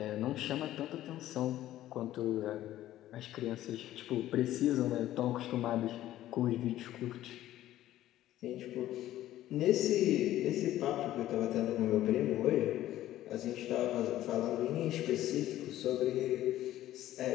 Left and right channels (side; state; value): right; quieter; 13.8 dB